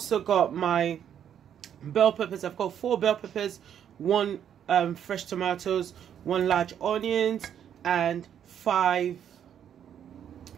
got my bell peppers. I've got 4 bell peppers, 1 fresh tomatoes, 1 large onions, and 5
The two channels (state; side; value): quieter; left; 9.2 dB